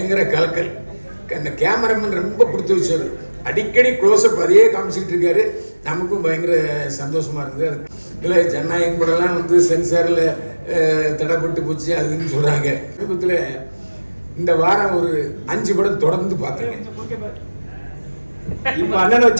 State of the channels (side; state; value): both; inverted; correlation -1.00